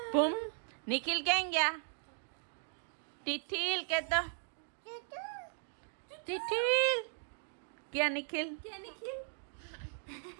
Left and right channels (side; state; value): left; silent; 53 dB below the other